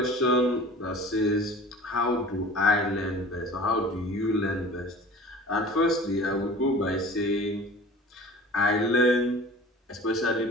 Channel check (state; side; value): normal; both; correlation 0.42